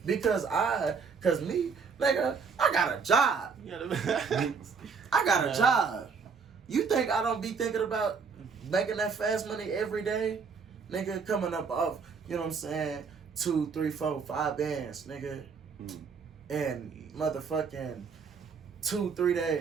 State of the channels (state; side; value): quieter; left; 5.5 dB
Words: Because me, nigga, I got a job. You got a message? I got a job. You think I don't be thinking about making that fast money every day? Nigga, coming up off, you know what I'm saying, 2, 3, 4, 5 bands, nigga. In motherfucking 2, 3